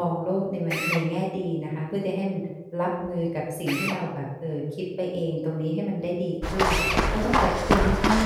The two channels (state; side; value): identical; both; correlation 1.00